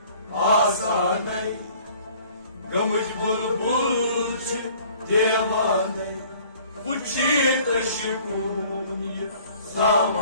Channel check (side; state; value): both; inverted; correlation -0.53